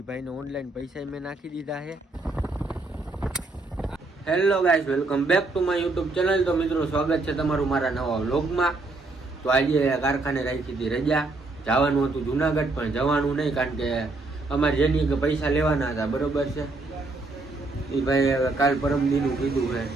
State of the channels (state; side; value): quieter; left; 3.3 dB